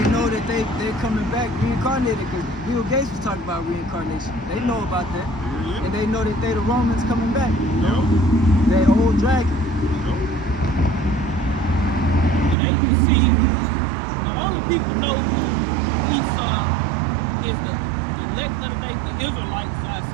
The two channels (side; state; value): left; drops out; at 12.6 s